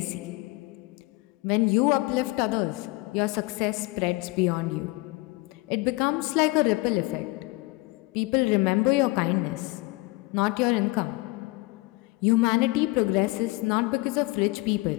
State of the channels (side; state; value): right; quieter; 23.4 dB